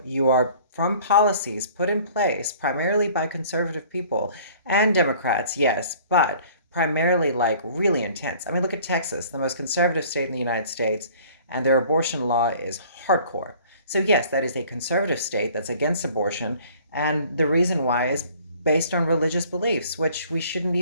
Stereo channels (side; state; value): both; inverted; correlation -0.51